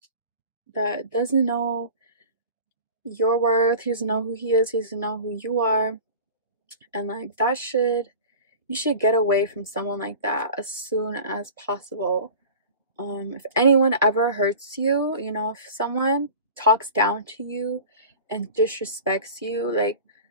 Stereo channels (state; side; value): inverted; both; correlation -0.39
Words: your worth. He doesn't know who he is. He doesn't know who you are. And like, you should get away from someone like that as soon as possible. If anyone ever hurts you, if someone talks down to you and disrespects you, like,